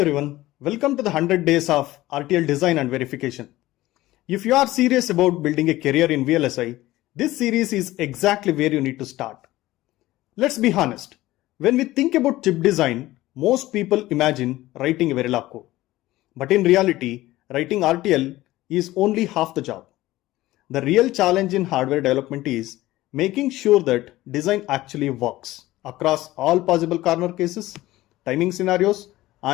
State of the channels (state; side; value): quieter; right; 16.9 dB